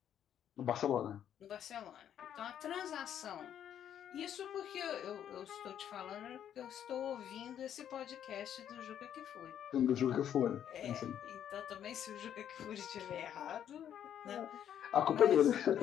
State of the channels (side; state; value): right; quieter; 9.8 dB